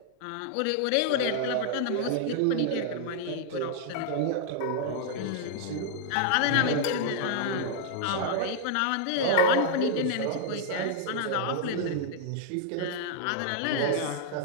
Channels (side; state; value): both; different; correlation -0.01